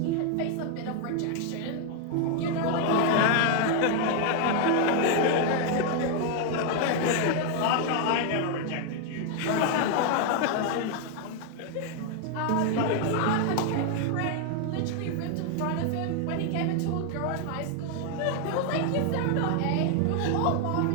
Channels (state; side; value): different; both; correlation 0.00